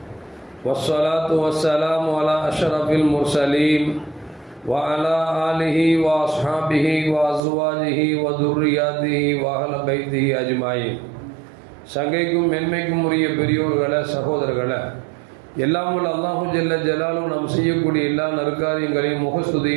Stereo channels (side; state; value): left; drops out; at 7.4 s